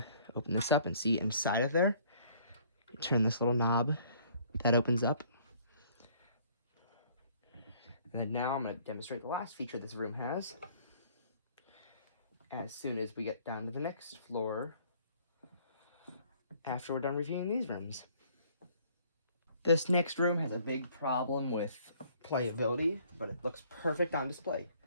open this up and see inside of there. You turn this little knob, that opens up. And then now I'm going to demonstrate the last feature this room has. As soon as we get down to the next floor, after we're done reviewing these rooms. This next room has a big problem with playability, but it looks perfect on display.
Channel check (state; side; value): inverted; both; correlation -0.59